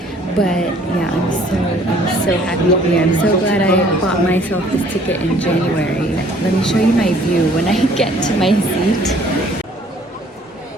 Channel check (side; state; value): both; normal; correlation 0.57